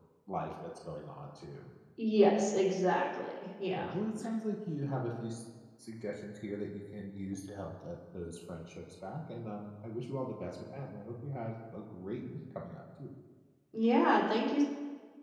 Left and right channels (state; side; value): identical; both; correlation 1.00